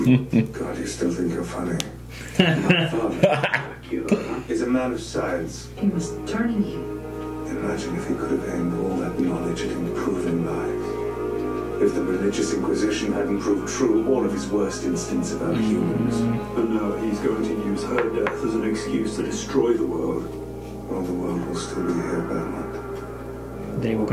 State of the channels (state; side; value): identical; both; correlation 1.00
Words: you still think you're funny. My father, Dracula, He's a man of science. He was turning you. Imagine if he could have aimed all that knowledge at improving lives. If the religious inquisition hadn't proved true all of his worst instincts about humans. and now he's going to use her death as an excuse to destroy the world. All the world will still be here, Belmont. They will